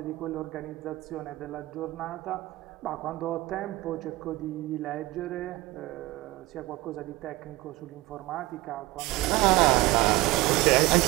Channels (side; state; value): left; quieter; 19.2 dB